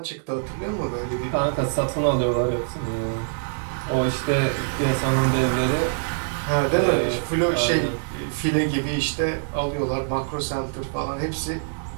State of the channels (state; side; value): silent; left; 62 dB below the other